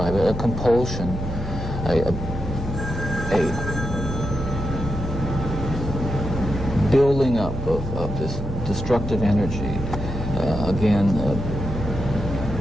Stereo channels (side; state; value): both; normal; correlation 0.86